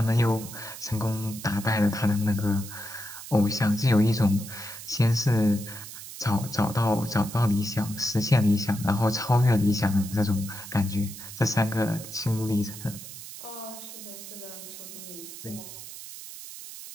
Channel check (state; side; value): noise; right; hiss, 12 dB below the sound